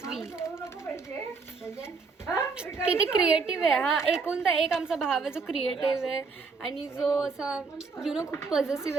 we. किती क्रिएटिव्ह आहे हा. एकूणता एक आमचा भाव आहे जो क्रिएटिव्ह आहे आणि जो असा खूप पॉझिटिव्ह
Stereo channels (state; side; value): quieter; left; 4.6 dB